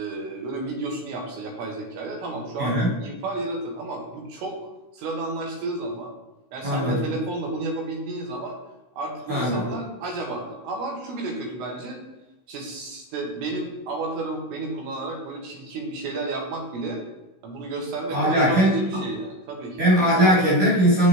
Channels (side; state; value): left; late; 16 ms